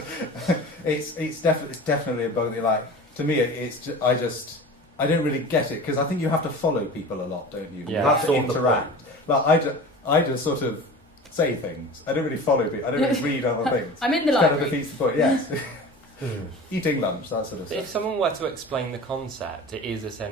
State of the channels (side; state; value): both; normal; correlation 0.36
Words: It's definitely a bug. To me, I don't really get it because I think you have to follow people a lot, don't you? Yeah. You have to interact. I just sort of say things. I don't really follow people. I don't really read other things. I'm in the library. library. Kind of defeats the point. Yes. Eating lunch, that sort of stuff. If someone were to explain the concept, it is